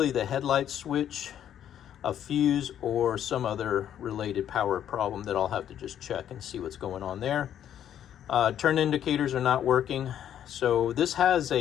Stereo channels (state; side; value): quieter; right; 10.2 dB